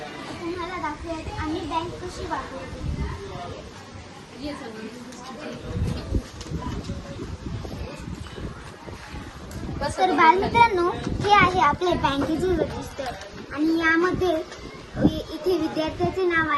तुम्हाला दाखवूयात आम्ही बँक कशी वापरतो. तर बालमित्रांनो, हे आहे आपले बँकेचे रजिस्टर आणि यामध्ये इथे विद्यार्थ्याचे नाव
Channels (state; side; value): identical; both; correlation 1.00